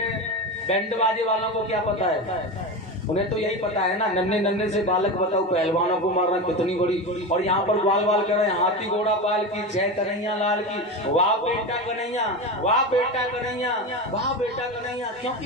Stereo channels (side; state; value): both; normal; correlation 0.22